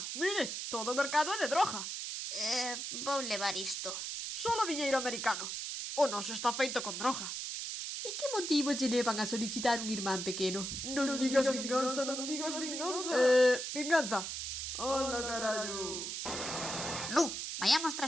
Mire, todo o mercado é de droga. Vou levar isto. Solo diñeiro americano. O noso está feito con droga. E que motivos lle levan a solicitar un irmán pequeno? Non digas vinganza, non digas vinganza. Vinganza. Hola, carallo. Lu, vayamos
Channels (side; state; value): right; noise; hiss, 4 dB below the sound